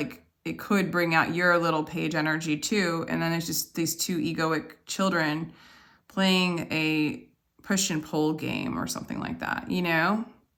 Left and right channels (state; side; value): identical; both; correlation 1.00